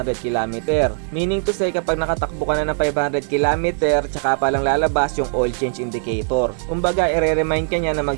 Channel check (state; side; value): silent; left; 55 dB below the other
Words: km. Meaning to say kapag nakatakbo ka na ng 500 km, tsaka pa lang lalabas yung oil change indicator. Kumbaga i-remind ka niya na